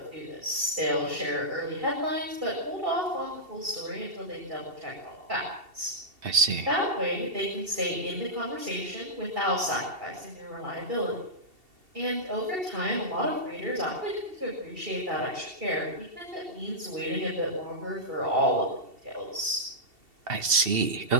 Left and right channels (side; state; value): left; late; 2.7 ms